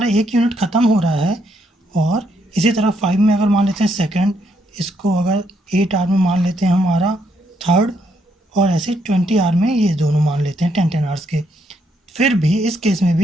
एक यूनिट ख़त्म हो रहा है, और इसी तरह 5 में अगर मान लेते हैं सेकंड, इसको अगर 8 आवर में मान लेते हैं हमारा थर्ड, और ऐसे 20 आवर में ये दोनों मान लेते हैं 10 आवर्स के, फिर भी इस केस में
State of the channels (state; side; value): normal; both; correlation 0.74